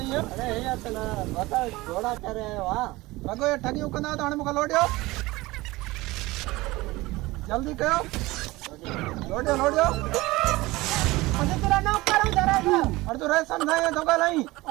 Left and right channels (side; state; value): left; quieter; 20.3 dB